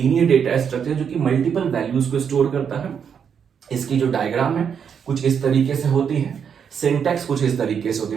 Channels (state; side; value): quieter; left; 7.4 dB